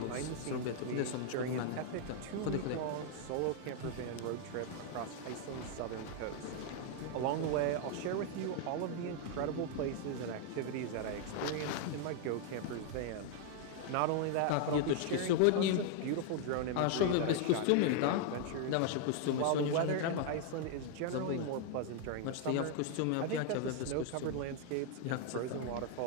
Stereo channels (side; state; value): both; different; correlation 0.00